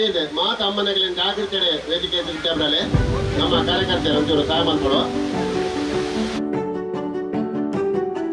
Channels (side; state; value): both; identical; correlation 1.00